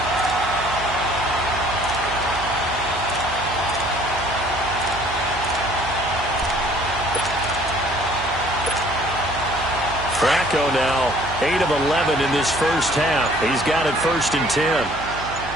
Flacco now 8 of 11 in this first half. He's got it 1st and 10.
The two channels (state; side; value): noise; right; hum, 12 dB below the sound